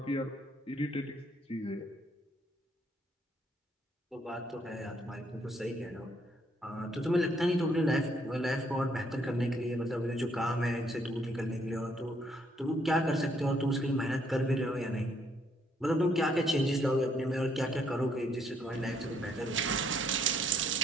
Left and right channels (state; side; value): normal; both; correlation 0.69